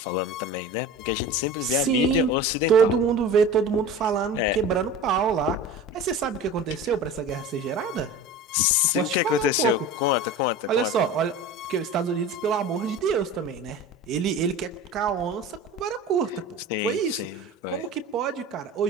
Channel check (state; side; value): normal; both; correlation 0.34